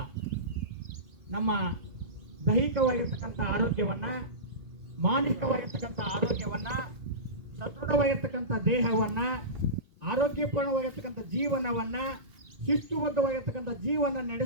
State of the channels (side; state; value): left; late; 2.4 ms